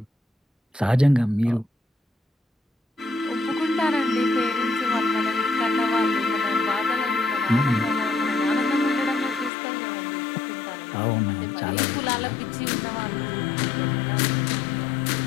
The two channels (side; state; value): right; drops out; at 9.5 s